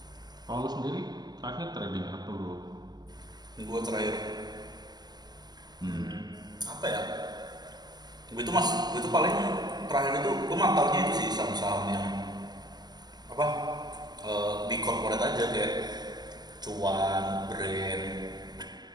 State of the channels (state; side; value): late; left; 0.20 ms